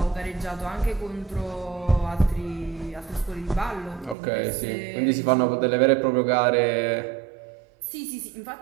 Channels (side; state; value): left; drops out; at 4.2 s